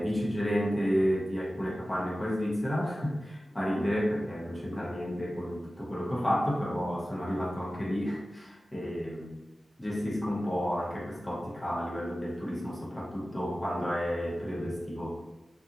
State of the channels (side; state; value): both; normal; correlation 0.95